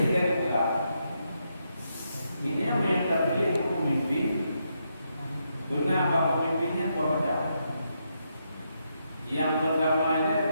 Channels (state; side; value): inverted; both; correlation -0.81